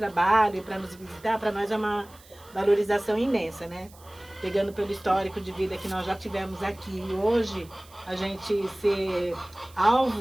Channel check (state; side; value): noise; right; hiss, 24 dB below the sound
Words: e para nos visitar, para nós é uma valorização imensa, né? Pegando pelo histórico de vida que nós já tivemos aqui. E hoje, a gente ser